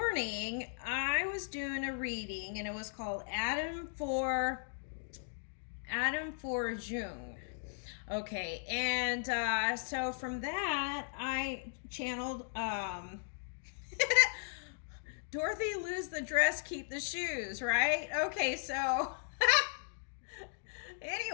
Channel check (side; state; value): right; silent; digital silence